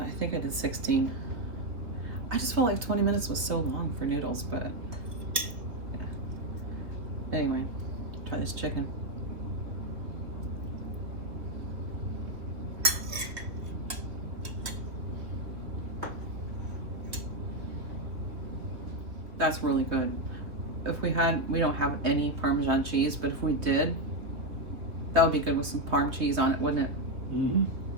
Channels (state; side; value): late; left; 3.0 ms